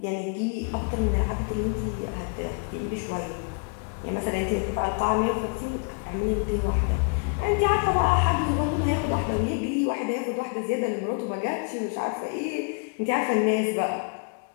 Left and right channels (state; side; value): quieter; right; 39.2 dB